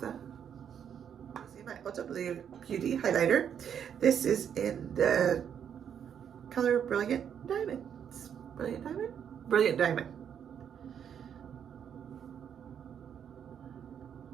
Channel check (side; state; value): left; quieter; 8.4 dB